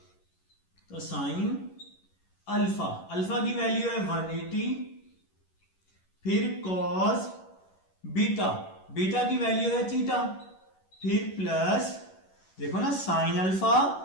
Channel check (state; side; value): late; right; 11 ms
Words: तो साइन अल्फा, अल्फा की वैल्यू है 180, फिर कॉस बीटा, बीटा की वैल्यू है थीटा, फिर प्लस, देखो ना, साइन अल्फा